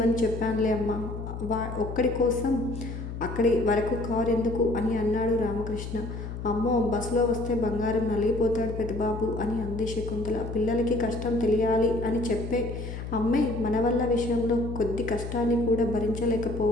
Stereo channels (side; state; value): left; noise; hum, 7 dB below the sound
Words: చెప్పానులే అమ్మా, ఒక్కడి కోసం అక్కడి వరకు కారు ఎందుకు అని అన్నాడు రామకృష్ణ. అమ్మో, బస్సులో వస్తే బంగారం నలిగిపోతాడు పెద్దబాబు అని అంది శకుంతల. పిల్లలకి కష్టం తెలియాలి అని చెప్పే అమ్మే మన వల్ల విషయంలో కొద్ది కష్టాన్ని కూడా